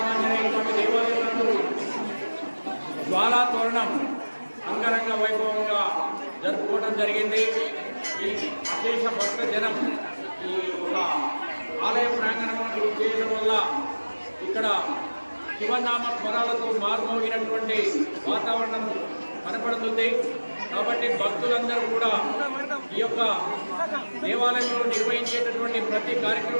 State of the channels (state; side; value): inverted; both; correlation -1.00